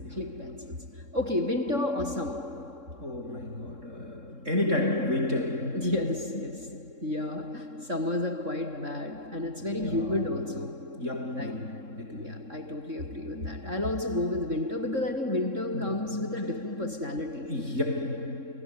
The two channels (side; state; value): left; late; 3.7 ms